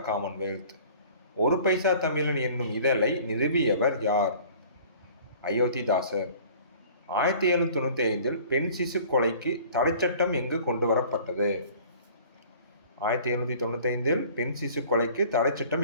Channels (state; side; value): inverted; both; correlation -0.49